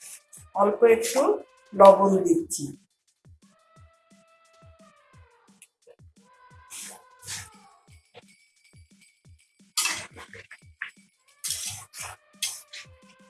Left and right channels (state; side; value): identical; both; correlation 1.00